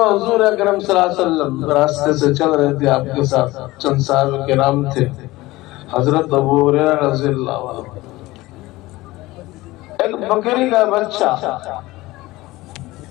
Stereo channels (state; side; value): quieter; right; 19.2 dB